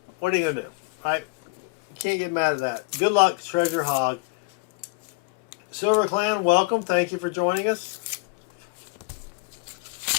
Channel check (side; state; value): right; quieter; 27.2 dB